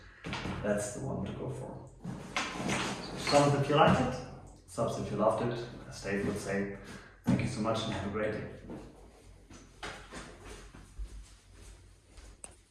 that's the one to go for. So thumbs if you liked it, subs if you loved it, as Dave would say. Thank you so much and have a great day.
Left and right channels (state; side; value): identical; both; correlation 1.00